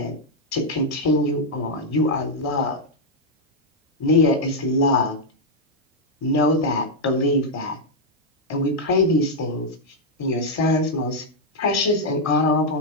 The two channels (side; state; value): both; normal; correlation -0.03